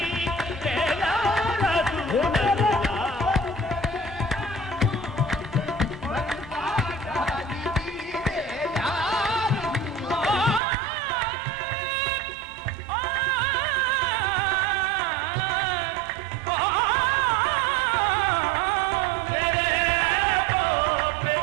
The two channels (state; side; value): drops out; left; at 10.6 s